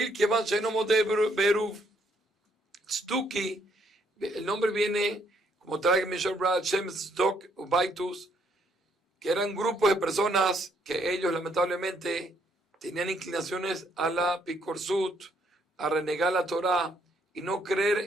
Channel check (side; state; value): both; normal; correlation 0.70